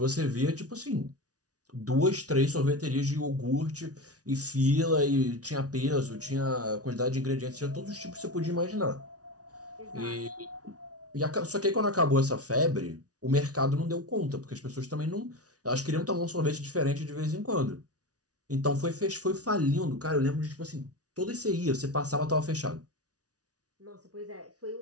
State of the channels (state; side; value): late; left; 0.68 ms